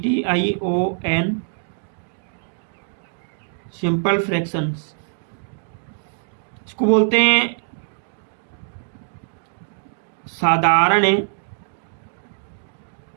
simple fractions, इसको बोलते हैं साधारण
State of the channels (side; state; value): left; silent; digital silence